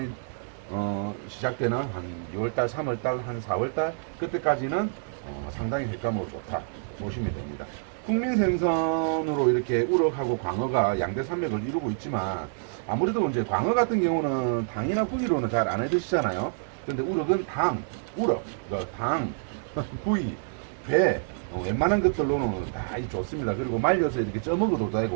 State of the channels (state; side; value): silent; left; digital silence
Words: 시작되는 한 2월달, 3월달, 한 4월달 그때까지는 상당히 횟감으로 좋다 보시면 됩니다. 국민생선으로 이렇게 우럭하고 광어가 양대 산맥을 이루고 있지만, 아무래도 이제 광어 같은 경우는 당이나 부위로는 잘 안 해드시잖아요. 근데 우럭은 당, 부위, 배, 웬만한 것들로는 다 좋습니다. 그리고 말려서 이렇게 쪄먹어도